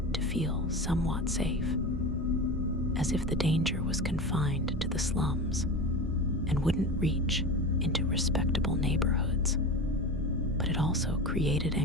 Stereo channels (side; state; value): both; normal; correlation 0.27